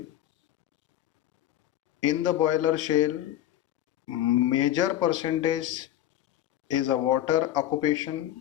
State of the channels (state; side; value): quieter; right; 12.6 dB